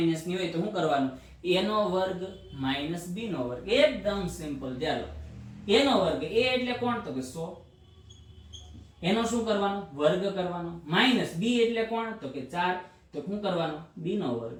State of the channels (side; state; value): both; identical; correlation 1.00